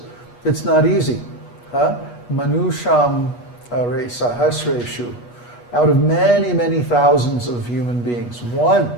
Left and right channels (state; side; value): late; right; 8.3 ms